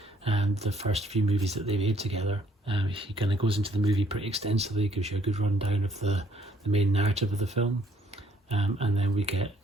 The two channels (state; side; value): normal; both; correlation 0.64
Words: and the first few movies that they made together. He kind of goes into the movie pretty extensively, gives you a good rundown of the main narrative of the film. And then we get